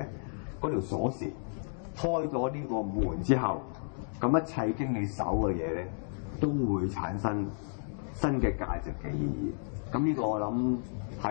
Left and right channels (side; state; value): right; silent; digital silence